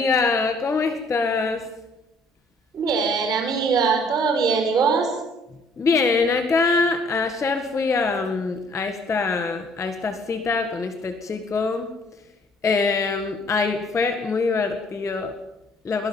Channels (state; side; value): normal; both; correlation 0.60